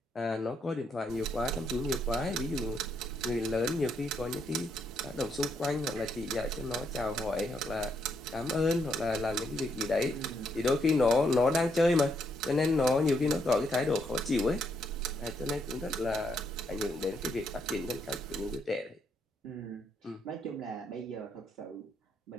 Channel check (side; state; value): both; normal; correlation 0.76